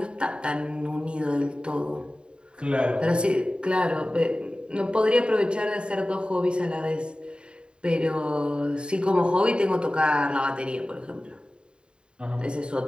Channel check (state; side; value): late; left; 0.051 ms